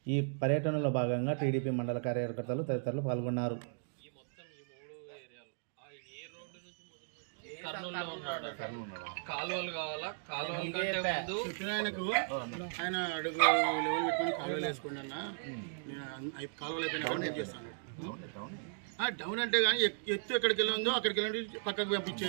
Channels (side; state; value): left; silent; digital silence